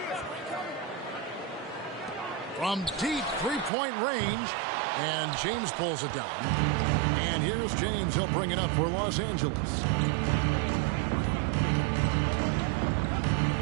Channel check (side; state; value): left; drops out; at 3.7 s